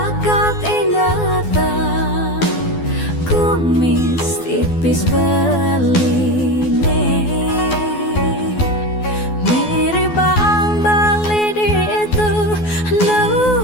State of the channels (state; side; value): late; right; 12 ms